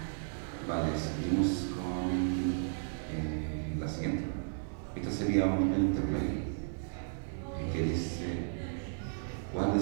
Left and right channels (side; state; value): left; silent; digital silence